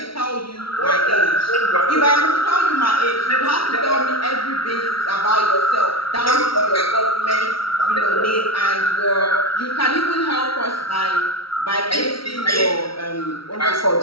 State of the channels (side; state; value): right; late; 0.75 ms